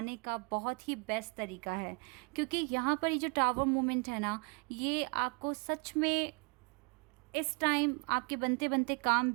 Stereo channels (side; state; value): left; quieter; 33.4 dB